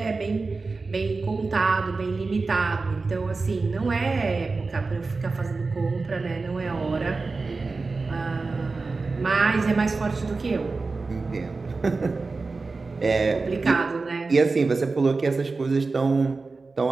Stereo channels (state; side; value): quieter; left; 3.9 dB